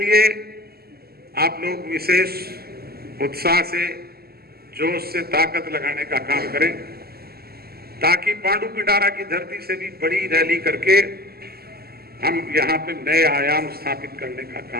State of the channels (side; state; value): left; late; 0.45 ms